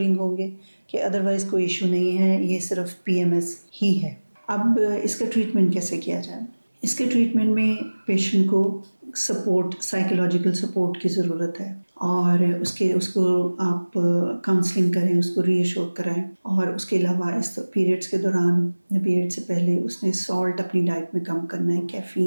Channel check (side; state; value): both; inverted; correlation -1.00